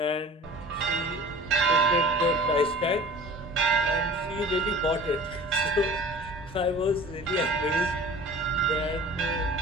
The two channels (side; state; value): both; normal; correlation 0.43